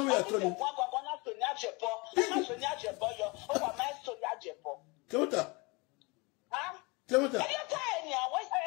way at all. Temota. Huh? Temota.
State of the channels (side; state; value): right; quieter; 27.3 dB